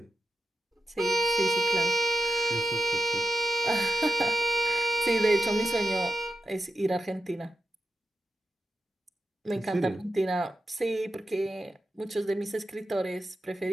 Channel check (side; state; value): both; normal; correlation 0.89